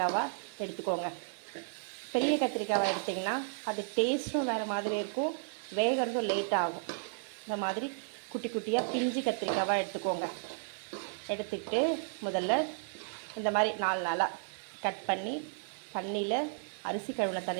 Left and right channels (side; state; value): left; silent; digital silence